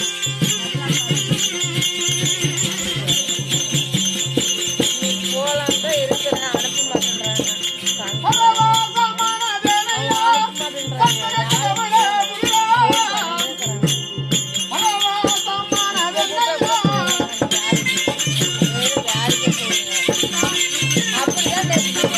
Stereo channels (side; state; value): both; identical; correlation 1.00